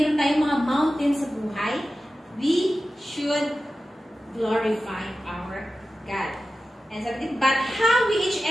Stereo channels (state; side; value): normal; both; correlation 0.94